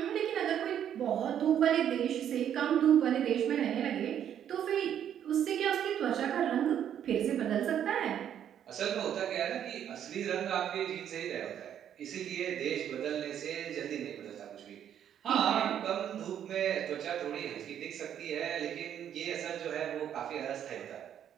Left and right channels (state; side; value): quieter; left; 9.7 dB